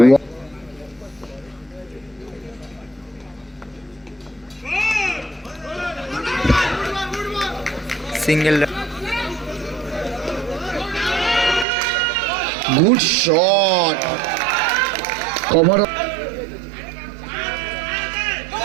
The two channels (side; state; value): left; drops out; at 11.7 s